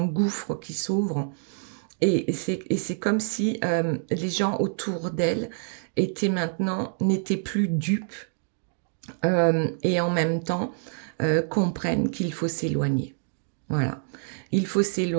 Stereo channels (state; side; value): silent; left; 61 dB below the other